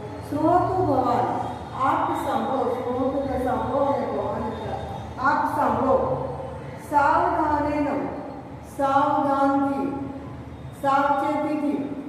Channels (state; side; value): identical; both; correlation 1.00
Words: શ્રોતુ ભવાન, આપ સાંભળો. શ્રોતુ એટલે સાંભળો અને ભવાન એટલે આપ સાંભળો. સાવધાનેન, સાવધાનથી, સાવચેતીથી,